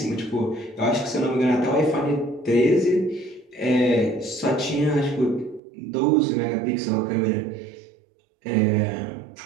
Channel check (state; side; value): drops out; left; at 5.6 s